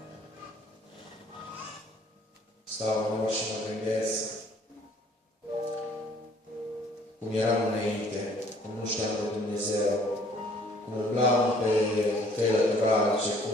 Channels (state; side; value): normal; both; correlation 0.58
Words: Stau în loc și mă gândesc cum eram înainte, cum nu știam de Dumnezeu, cum umblam pe căile lăturalnice,